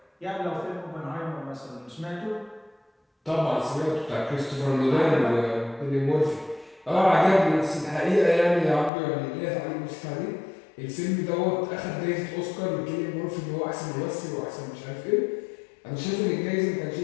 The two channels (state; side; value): drops out; right; at 8.9 s